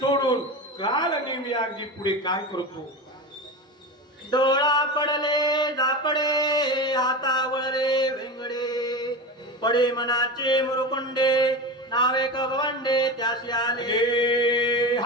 कालनेमी अगदी पुढे काय करतो. डोळा पडले झापडे हातावळे वेंगडे पडे मनाचे मुरुकुंडे नावे कवंडे त्याशी आले.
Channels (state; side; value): normal; both; correlation 0.24